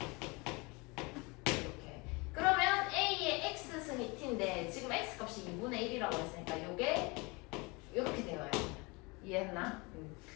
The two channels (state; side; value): quieter; right; 26.9 dB